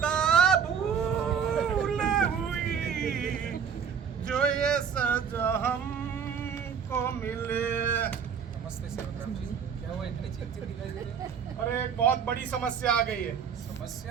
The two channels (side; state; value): left; quieter; 7.2 dB